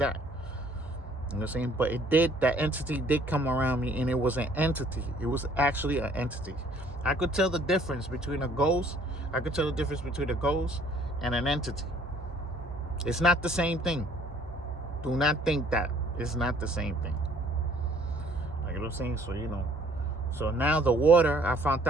You know what I'm saying? But that entity did come around me, and it was an entity. It was actually an entity. I could tell the difference between a ghost. I could tell the difference between a ghost and an entity. It's not the same thing. Do not think that. It's not the same thing. Like, you know what I'm saying? So, you know. So now the water, I found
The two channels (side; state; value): both; normal; correlation 0.59